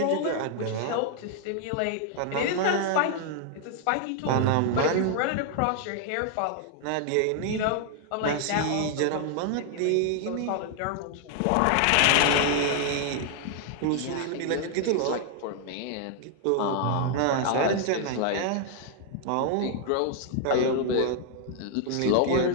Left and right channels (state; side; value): different; both; correlation 0.00